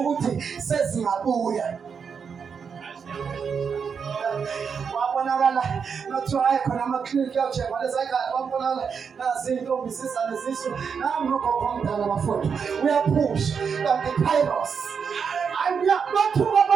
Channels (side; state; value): left; quieter; 6.3 dB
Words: sezingabuya wabonakala nothiwa hayi khona amaklinikhi yawushekwa lezayikade wabonakala nazintombi zizane zisu nami nogogo omdala bafowethu uyaphusha kanti kairos bathuka